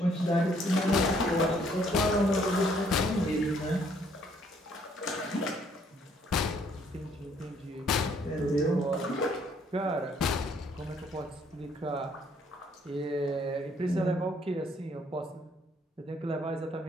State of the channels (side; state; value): both; normal; correlation 0.65